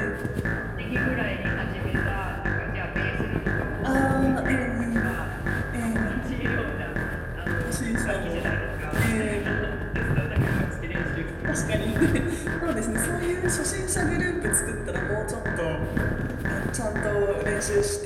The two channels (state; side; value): identical; both; correlation 1.00